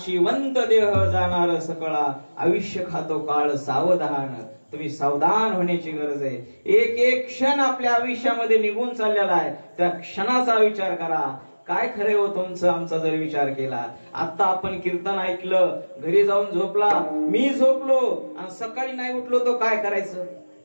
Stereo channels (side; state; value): both; inverted; correlation -1.00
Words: देह जाणार सकळा आयुष्य खातो काळ सावधान. तुम्ही सावधान होण्याची गरज आहे. एक एक क्षण आपल्या आयुष्यामध्ये निघून चाललेला आहे. त्या क्षणाचा विचार करा. काय खरे हो तुमचं आमचा जर विचार केला. आता आपण कीर्तन ऐकलं, घरी जाऊन झोपला, मी झोपलो आणि सकाळी नाही उठलो तो काय करायचं?